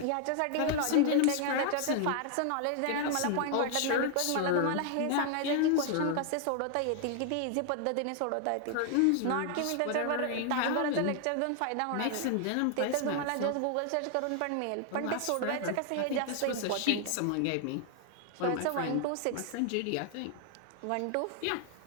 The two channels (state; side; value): different; both; correlation 0.00